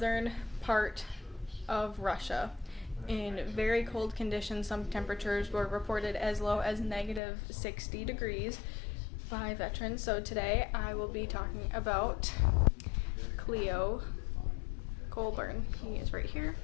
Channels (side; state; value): right; drops out; at 7.2 s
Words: part of Russia in very cold conditions. Some temperatures were reported as low as negative 60 degrees by veterans. So today I will be talking about Cleo Colburn. He is right here.